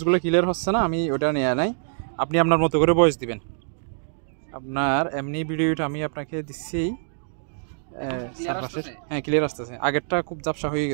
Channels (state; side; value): silent; left; digital silence